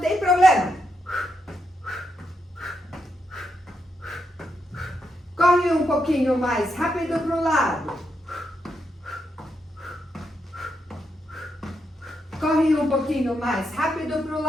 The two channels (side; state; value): both; normal; correlation 0.82